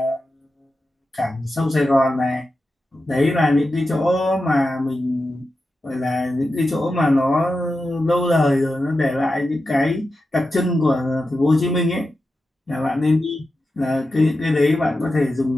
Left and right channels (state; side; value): normal; both; correlation 0.91